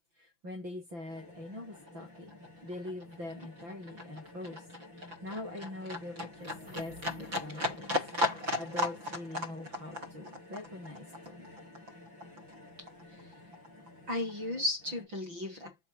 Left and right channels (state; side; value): late; left; 5.9 ms